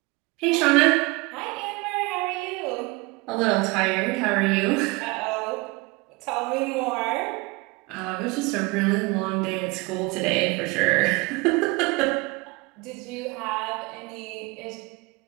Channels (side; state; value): left; quieter; 25.3 dB